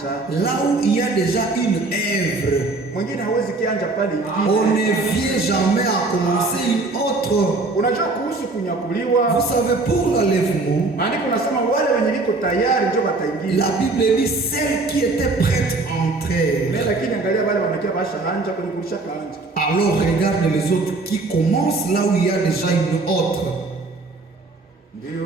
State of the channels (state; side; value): quieter; left; 3.3 dB